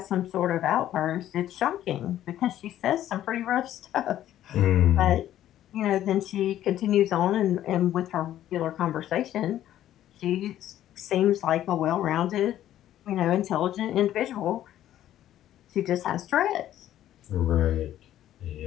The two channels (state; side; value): quieter; right; 12.4 dB